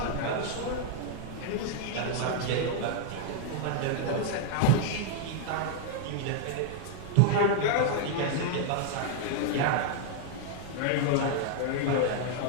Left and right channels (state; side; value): different; both; correlation 0.00